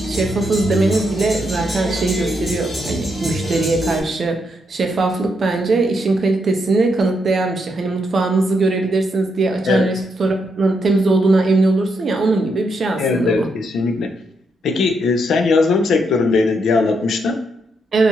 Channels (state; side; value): normal; both; correlation 0.79